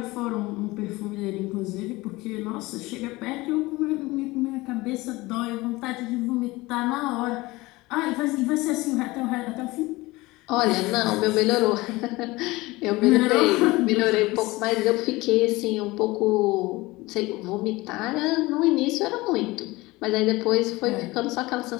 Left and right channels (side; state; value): right; quieter; 20.9 dB